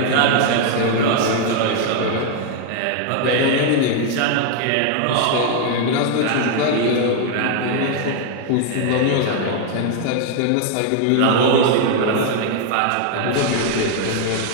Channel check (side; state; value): both; different; correlation 0.00